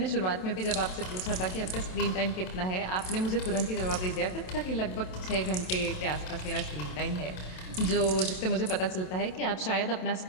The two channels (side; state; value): right; late; 27 ms